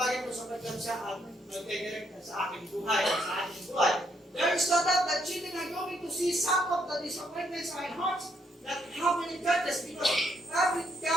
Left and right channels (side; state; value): both; normal; correlation 0.73